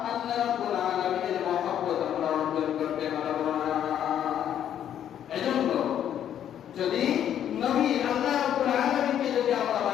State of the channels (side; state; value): right; quieter; 10.0 dB